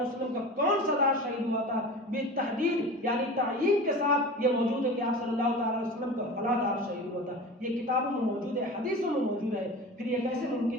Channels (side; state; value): both; normal; correlation 0.34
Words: وسلم کا کون سا دانت شہید ہوا تھا بالتحدید یعنی تعیین کے ساتھ یہ موجود ہے کہ آپ صلی اللہ تعالی وسلم کا فلاں دانت شہید ہوا تھا، یہ کتابوں میں موجود ہے، حدیثوں میں موجود ہے۔ پھر یہ کیسے